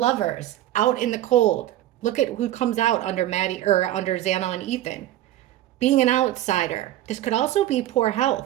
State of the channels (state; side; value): quieter; left; 13.6 dB